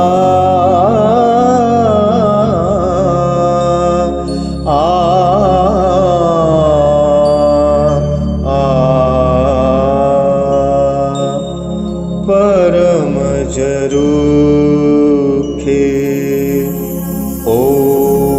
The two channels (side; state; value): both; identical; correlation 1.00